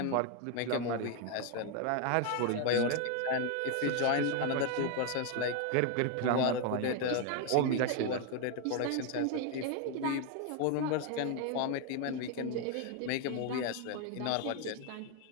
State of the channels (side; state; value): both; different; correlation 0.01